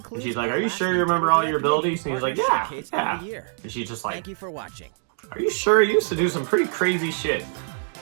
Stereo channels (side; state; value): left; silent; digital silence